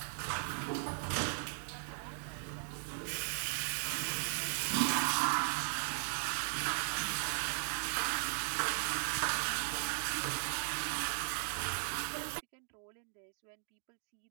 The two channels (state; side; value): silent; left; digital silence